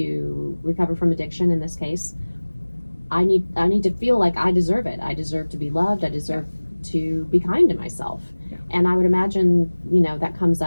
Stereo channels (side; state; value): both; inverted; correlation -1.00